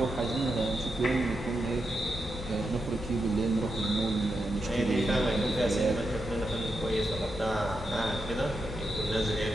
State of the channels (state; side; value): normal; both; correlation 0.86